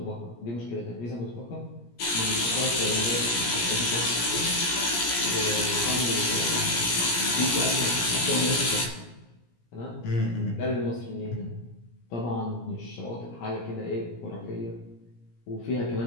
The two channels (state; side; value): late; right; 17 ms